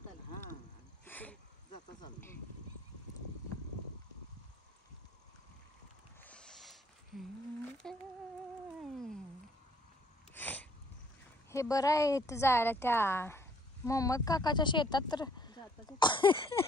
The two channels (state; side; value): normal; both; correlation 0.63